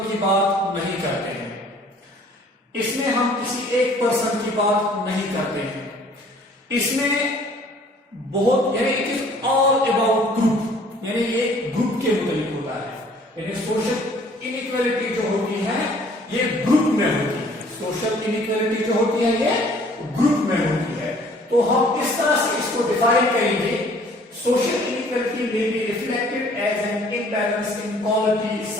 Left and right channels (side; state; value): both; normal; correlation 0.55